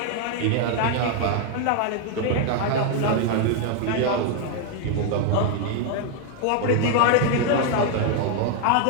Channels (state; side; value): different; both; correlation 0.00